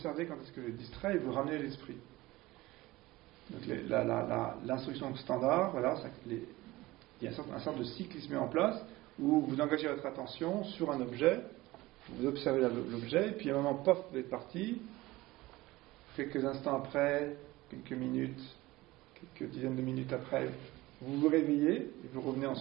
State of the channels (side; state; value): left; quieter; 19.0 dB